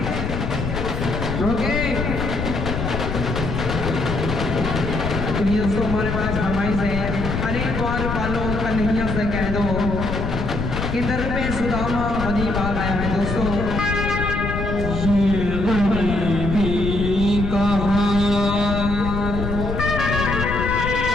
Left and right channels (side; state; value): left; noise; rumble, 3 dB below the sound